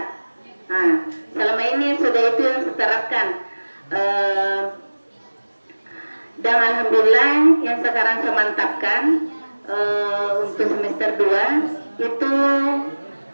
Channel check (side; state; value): both; inverted; correlation -1.00